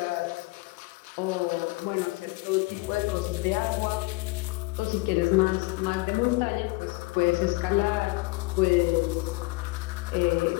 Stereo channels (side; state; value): right; quieter; 23.5 dB